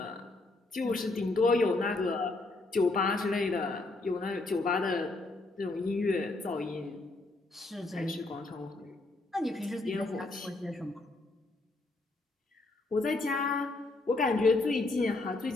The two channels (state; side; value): quieter; right; 3.1 dB